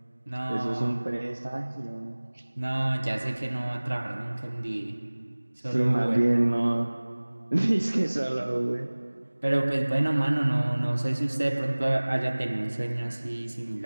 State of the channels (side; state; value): both; inverted; correlation -1.00